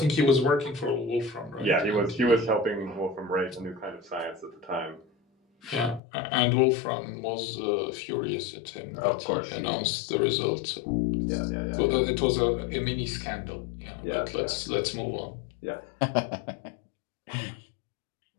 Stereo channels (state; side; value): drops out; right; at 6.0 s